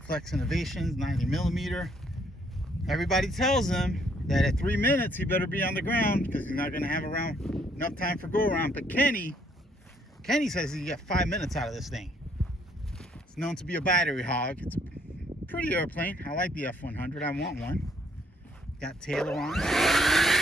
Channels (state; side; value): normal; both; correlation 0.67